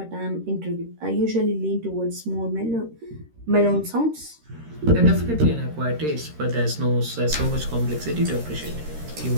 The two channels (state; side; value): late; left; 13 ms